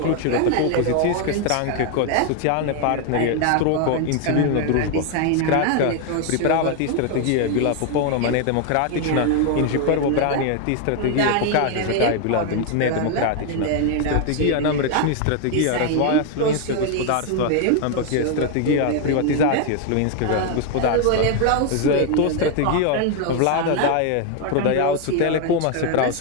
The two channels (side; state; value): both; different; correlation 0.01